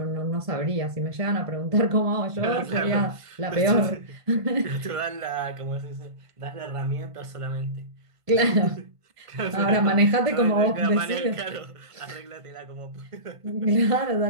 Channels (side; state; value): left; late; 1.5 ms